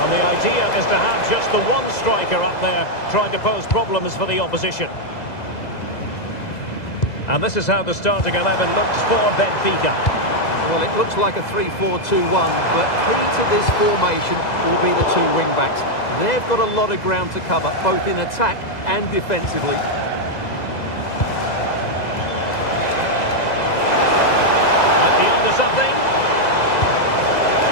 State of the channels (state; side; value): late; right; 2.0 ms